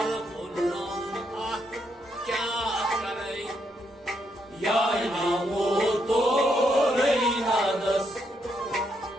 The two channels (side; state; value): both; normal; correlation 0.77